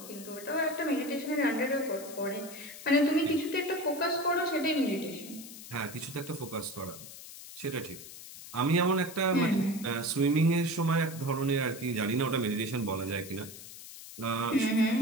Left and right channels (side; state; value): left; noise; hiss, 14 dB below the sound